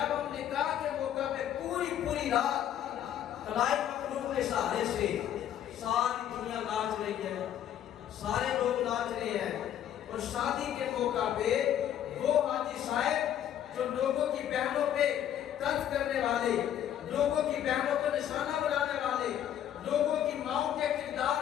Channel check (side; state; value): right; quieter; 10.5 dB